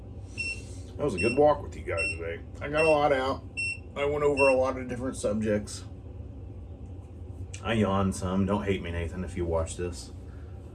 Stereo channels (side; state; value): both; identical; correlation 1.00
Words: That was a good walk with you guys today. I got a lot out. I went over a lot of different subjects. I yawned some. Don't hate me, Nathan, if you watch this.